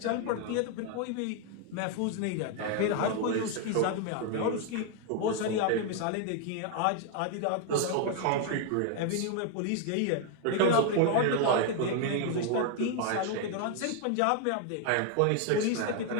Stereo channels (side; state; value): both; different; correlation 0.00